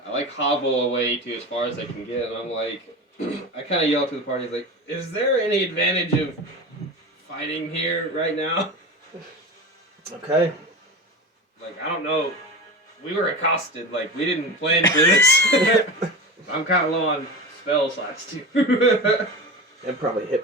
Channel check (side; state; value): both; normal; correlation 0.27